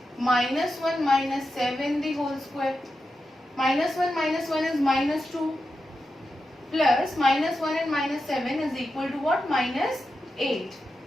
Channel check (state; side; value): normal; both; correlation 0.89